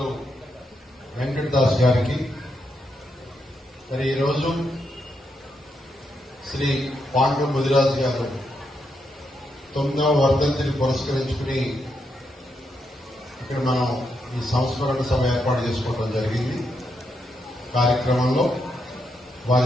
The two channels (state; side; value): normal; both; correlation 0.81